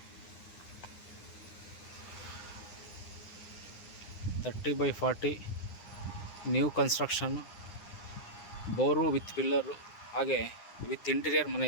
30x40 new construction, bore with pillar, ಹಾಗೆ ವಿತ್ ಇಂಟೀರಿಯರ್ ಮನೆ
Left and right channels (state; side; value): late; right; 9.8 ms